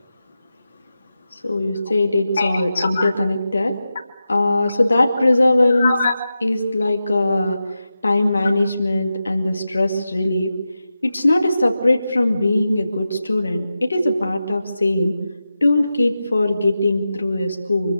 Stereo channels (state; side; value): inverted; both; correlation -0.91